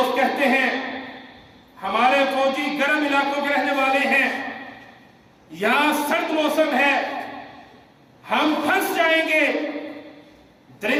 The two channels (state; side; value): identical; both; correlation 1.00